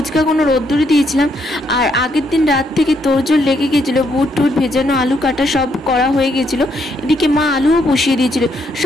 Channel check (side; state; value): both; normal; correlation 0.74